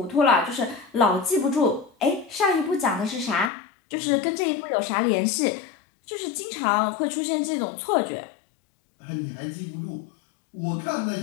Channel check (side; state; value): right; drops out; at 3.5 s